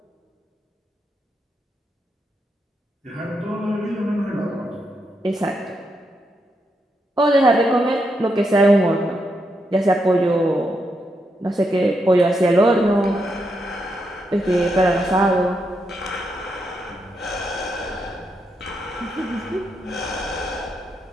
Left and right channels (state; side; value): normal; both; correlation 0.82